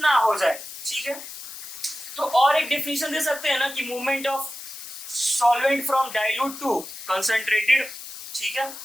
हो जाए। ठीक है, तो और एक डेफिनेशन दे सकते हैं ना कि movement of solvent from dilute to concentrated. ठीक है,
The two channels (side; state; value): left; noise; hiss, 12 dB below the sound